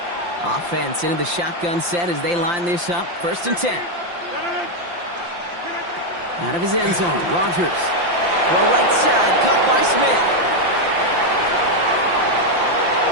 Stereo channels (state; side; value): late; left; 5.8 ms